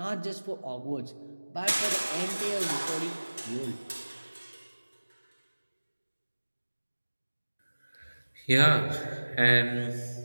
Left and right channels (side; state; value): both; inverted; correlation -1.00